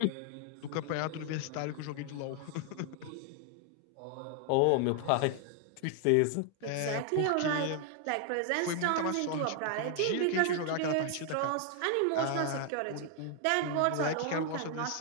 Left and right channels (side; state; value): both; different; correlation 0.00